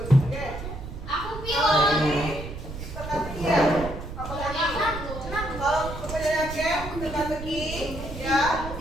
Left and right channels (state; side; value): noise; right; rumble, 9 dB below the sound